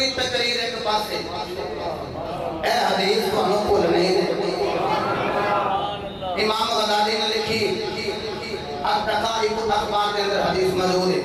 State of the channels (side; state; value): both; identical; correlation 1.00